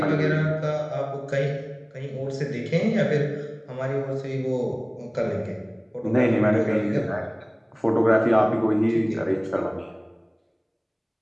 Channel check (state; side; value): identical; both; correlation 1.00